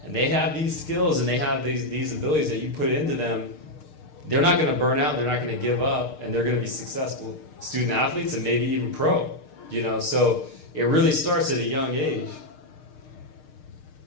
and they have these skills and they have these abilities that you put into them, they're not going to burn out, they're not going to give up, and they're going to be successful student athletes and maybe even pro. So it really starts at a young age.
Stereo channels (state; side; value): late; right; 6.6 ms